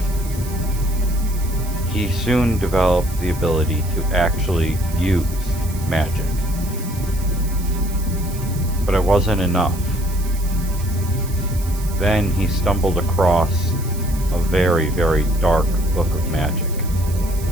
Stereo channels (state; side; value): noise; right; hiss, 16 dB below the sound